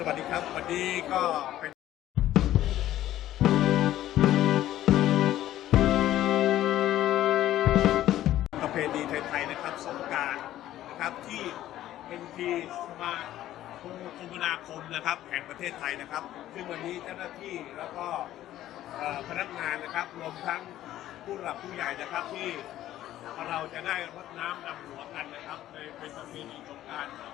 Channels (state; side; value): quieter; right; 13.4 dB